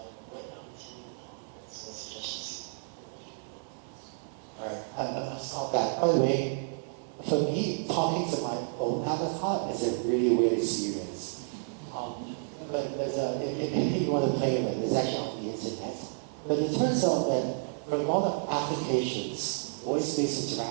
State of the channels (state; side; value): silent; left; digital silence